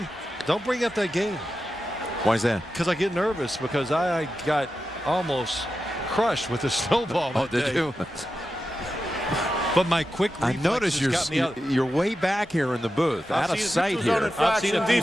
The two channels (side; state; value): both; normal; correlation 0.91